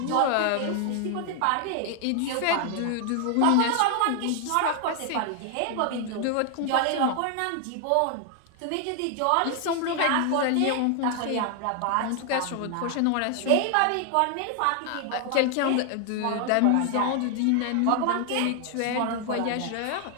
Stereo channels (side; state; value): both; different; correlation 0.00